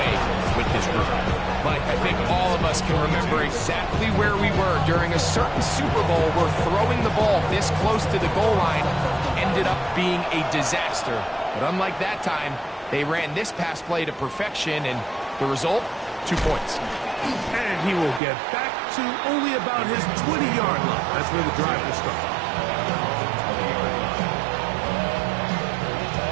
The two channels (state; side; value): drops out; left; at 18.2 s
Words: with this group. Mike, I think all of us can remember exactly where we were during a certain Super Bowl where throwing the ball this close to the goal line ended up being a disaster. But unlike that time, they ran this pass play to perfection, and the result, 2 points. And he will get back to only about his 20-yard line. That's where the drive will start.